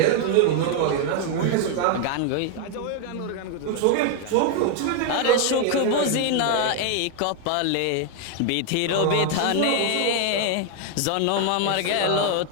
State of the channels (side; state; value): both; different; correlation 0.00